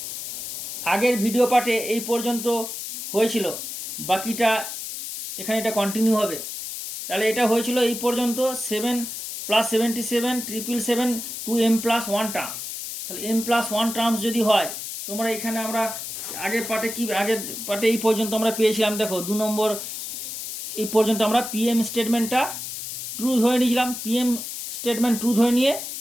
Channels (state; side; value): noise; left; hiss, 7 dB below the sound